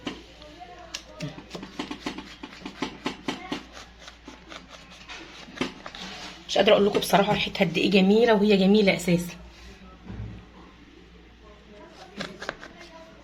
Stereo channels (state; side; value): identical; both; correlation 1.00